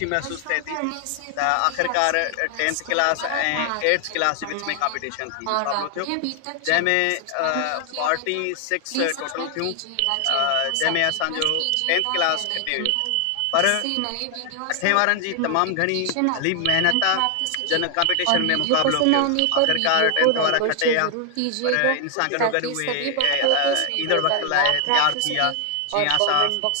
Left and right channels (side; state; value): both; different; correlation 0.00